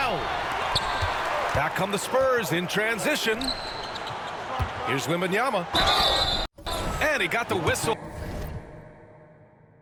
Back come the Spurs in transition. Here's Wembanyama. And he got the whistle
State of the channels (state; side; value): identical; both; correlation 1.00